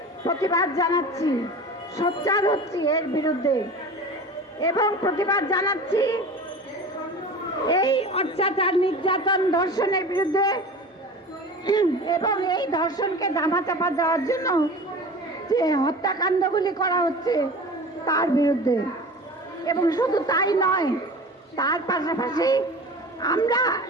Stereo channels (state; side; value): normal; both; correlation 0.36